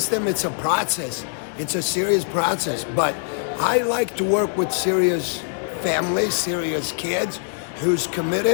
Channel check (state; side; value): silent; right; digital silence